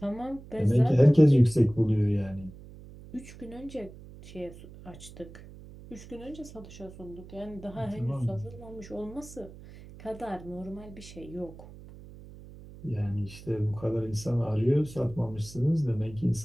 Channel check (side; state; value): right; noise; hum, 17 dB below the sound